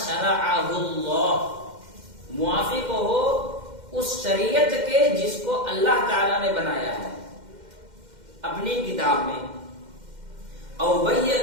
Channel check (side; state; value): left; late; 2.1 ms